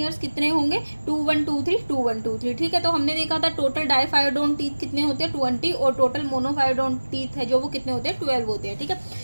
कितने होंगे, 2123। ठीक है, तो हमने देखा था टोटल डायफायोडोंट टीथ कितने होते हैं, 20, और टोटल मोनोफायोडोंट टीथ है जो वो कितने होते हैं, 12 होते हैं। ठीक है,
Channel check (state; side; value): inverted; both; correlation -1.00